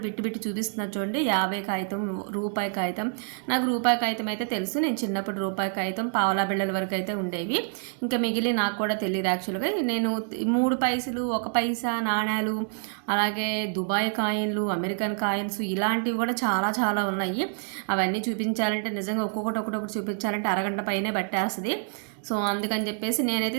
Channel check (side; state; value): left; silent; 60 dB below the other